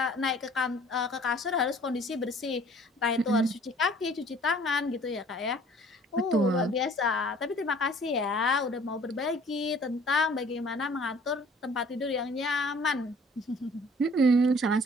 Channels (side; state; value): both; normal; correlation 0.53